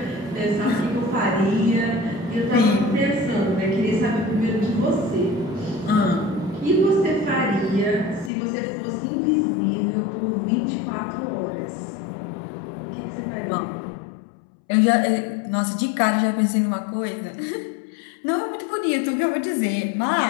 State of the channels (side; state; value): right; drops out; at 8.3 s